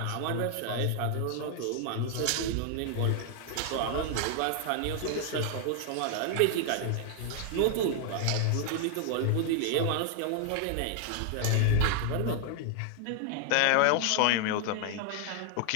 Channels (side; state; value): both; different; correlation 0.00